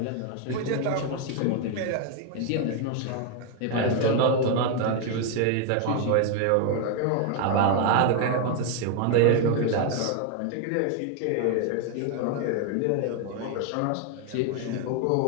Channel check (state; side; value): different; both; correlation 0.01